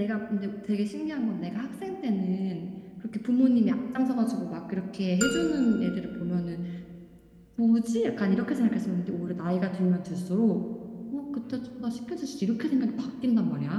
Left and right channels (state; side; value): identical; both; correlation 1.00